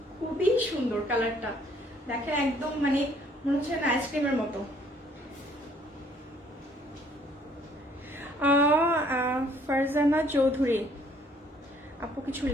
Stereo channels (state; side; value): normal; both; correlation 0.62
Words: খুবই সুন্দর কালারটা, দেখেন একদম মানে মনে হচ্ছে না আইসক্রিমের মতো। ফারজানা চৌধুরী আপু কিছু